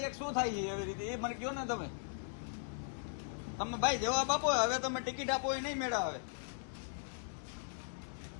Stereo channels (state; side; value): silent; right; digital silence